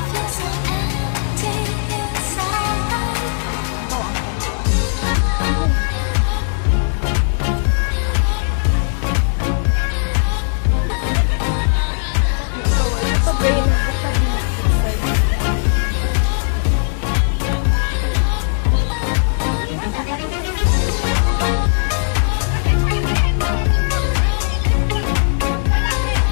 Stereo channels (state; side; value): silent; right; digital silence